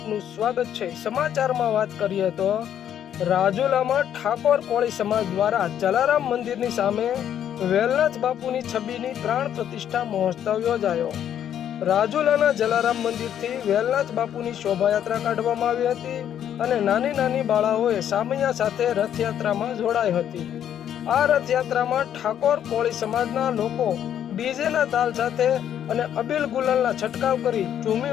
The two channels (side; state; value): right; quieter; 9.9 dB